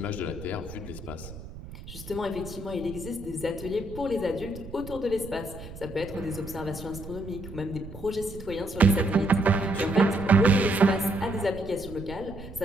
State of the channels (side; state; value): right; noise; rumble, 14 dB below the sound